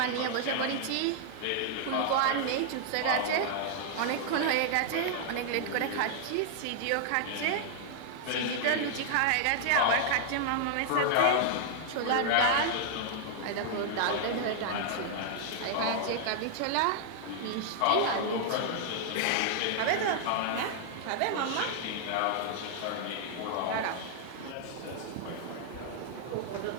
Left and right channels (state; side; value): different; both; correlation 0.00